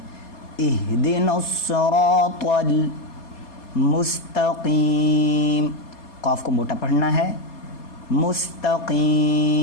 اہدنا الصراط المستقیم، قاف کو موٹا پڑھنا ہے۔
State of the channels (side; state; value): right; late; 4.2 ms